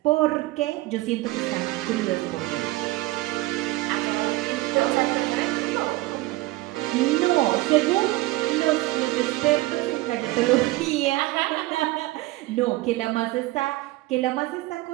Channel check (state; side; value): quieter; left; 19.2 dB